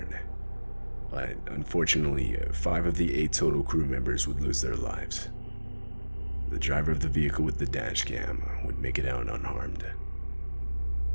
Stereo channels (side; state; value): both; inverted; correlation -1.00